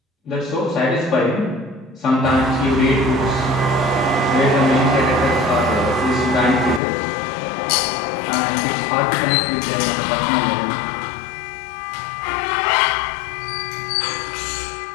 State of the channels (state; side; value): drops out; right; at 6.8 s